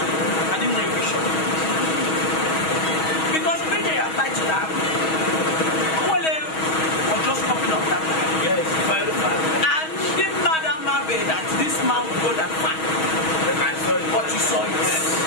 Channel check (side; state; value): right; late; 6.3 ms